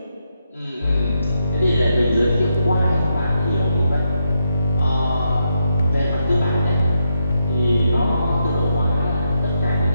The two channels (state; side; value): inverted; both; correlation -0.81